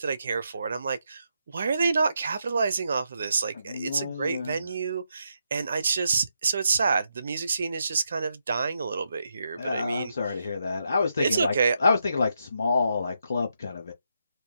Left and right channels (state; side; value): inverted; both; correlation -0.82